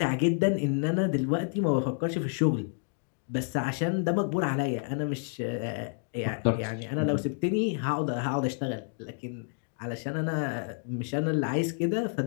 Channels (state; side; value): silent; right; 58 dB below the other